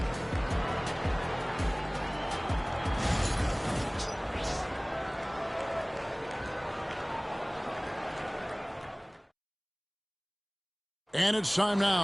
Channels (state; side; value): identical; both; correlation 1.00